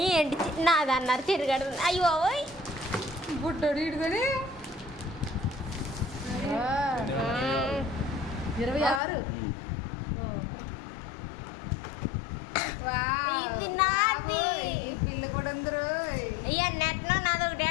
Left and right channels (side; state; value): right; drops out; at 9.0 s